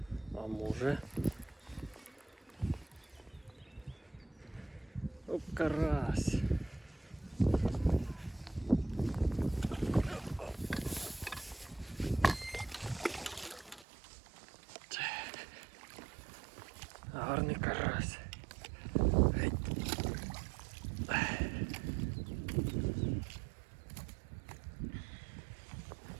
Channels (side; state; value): left; drops out; at 13.9 s